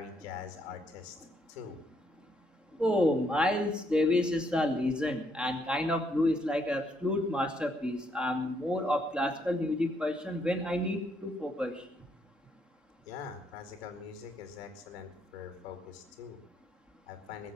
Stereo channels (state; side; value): normal; both; correlation 0.73